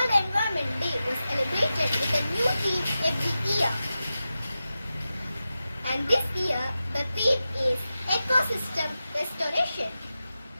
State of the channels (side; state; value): both; inverted; correlation -0.92